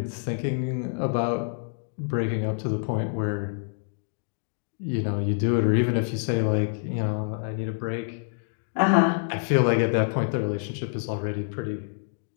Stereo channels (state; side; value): silent; right; digital silence